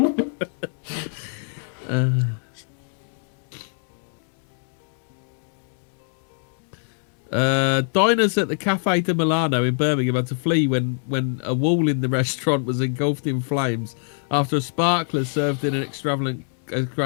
Diners at the Cafe de Milano in Birmingham had to flee when a wall in the restaurant was engulfed in flames after a sparkler served in an extravagant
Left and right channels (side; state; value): right; silent; 63 dB below the other